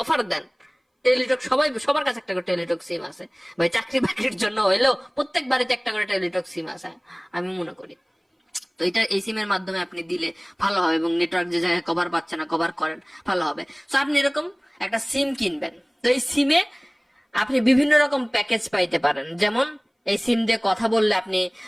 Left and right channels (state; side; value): identical; both; correlation 1.00